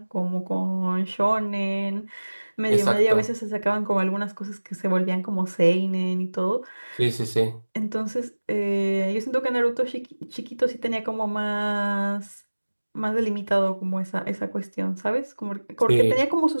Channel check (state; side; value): inverted; both; correlation -1.00